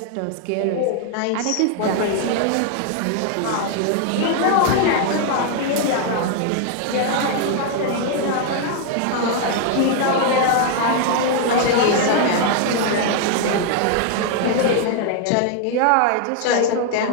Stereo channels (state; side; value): different; both; correlation 0.00